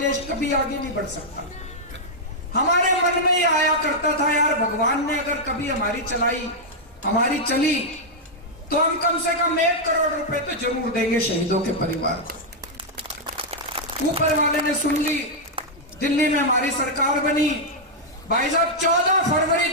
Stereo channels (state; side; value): normal; both; correlation -0.04